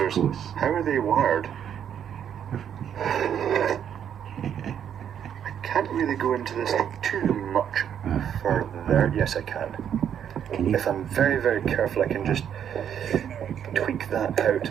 course. How are they wired? I can't really go into this too much further. Yes, I can. If I'm very, very careful, I can just tweak that out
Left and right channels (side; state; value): left; quieter; 9.0 dB